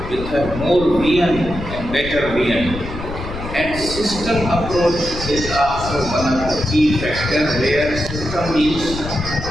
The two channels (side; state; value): left; noise; rumble, 9 dB below the sound